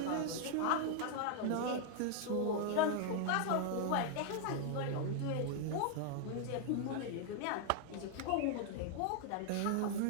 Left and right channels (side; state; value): both; different; correlation 0.00